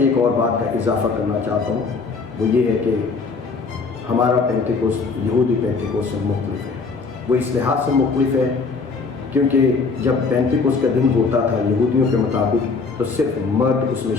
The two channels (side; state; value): right; quieter; 4.5 dB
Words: اور بات کا اضافہ کرنا چاہتا ہوں, وہ یہ ہے کہ ہمارا پینتیکوس یہودی پینتیکوس سے مختلف ہے. وہ اس لحاظ سے مختلف ہے کیونکہ جب پینتیکوس کا دن ہوتا تھا یہودیوں کے مطابق تو صرف مرد اس میں